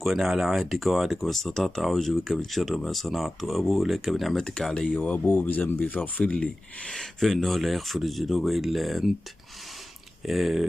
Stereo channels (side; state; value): both; normal; correlation 0.95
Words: وأنا على عهدك ووعدك ما استطعت، أعوذ بك من شر ما صنعت، وأبوء لك بنعمتك علي وأبوء بذنبي فاغفر لي فإنه لا يغفر الذنوب إلا أنت.